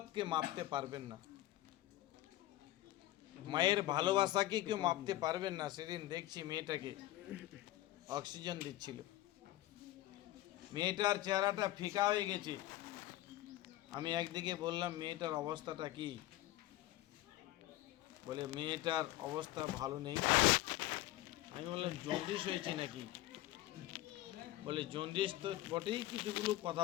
মাপতে পারবেন না, মায়ের ভালোবাসাকে কেউ মাপতে পারবেন না। সেদিন দেখছি মেয়েটাকে অক্সিজেন দিচ্ছিল, মেয়েটার চেহারাটা ফিকা হয়ে গেছে। আমি একদিকে বললাম মেয়েটার অবস্থাটা কি, বলে মেয়েটার অবস্থা ভালো নেই। আমি বললাম জন্ডিস হয়েছে নাকি, বলে জন্ডিস তো বটেই, কিছুগুলো কথা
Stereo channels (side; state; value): right; quieter; 16.0 dB